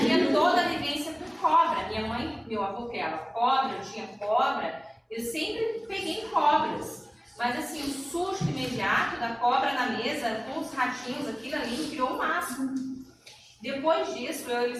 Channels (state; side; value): identical; both; correlation 1.00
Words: toda a vivência com cobra, minha mãe, meu avô criava cobra, eu tinha cobra, eu sempre peguei cobras. Mas assim, o susto imediato da cobra na mesa, com os ratinhos, aquilo ali, criou um máximo. Depois disso,